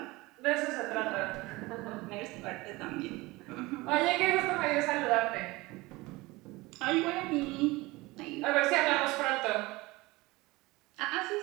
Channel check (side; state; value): left; quieter; 21.7 dB